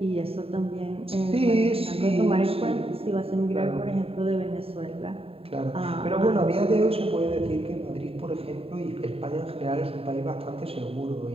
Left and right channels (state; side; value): late; left; 0.27 ms